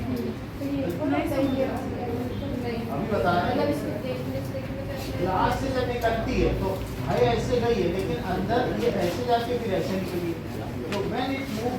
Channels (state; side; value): identical; both; correlation 1.00